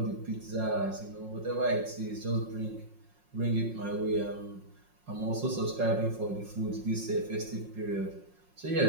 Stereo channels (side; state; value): left; late; 5.6 ms